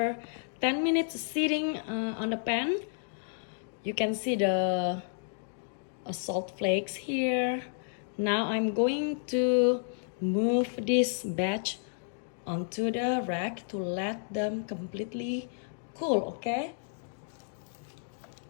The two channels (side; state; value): right; silent; digital silence